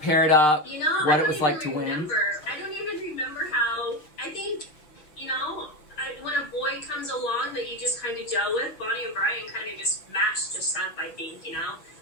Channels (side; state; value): right; late; 6.3 ms